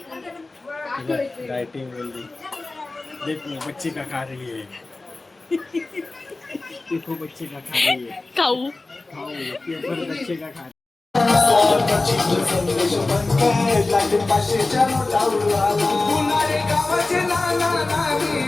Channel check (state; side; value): quieter; right; 3.3 dB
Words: डाइटिंग बोल रही. देखो बच्चे का खा रही है. देखो बच्चे का खा रही है. खाऊ पेपर बच्चे का खा.